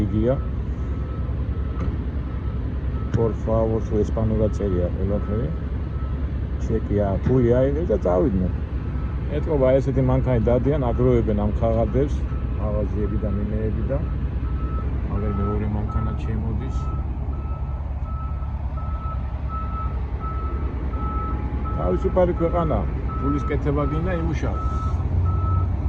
Por favor, su ესპანურად წერია ყველაფერი. ჩეკია, ფული აიღეს და წავიდნენ. ეთქობა ესეთი მანქანი დადიან, აგროვებენ ამ ხაღადებს, მაღაზიები და მინეები და აგერ მეორე მანქანა შემოდის. თავისუფალი ქვეყანა, ფულის კეთება გინდა იმუშაო.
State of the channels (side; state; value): both; identical; correlation 1.00